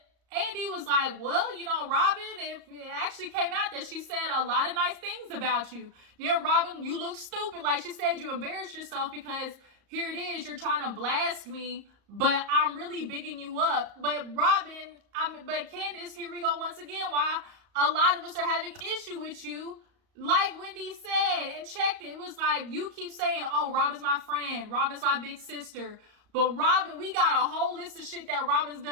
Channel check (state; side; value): late; left; 34 ms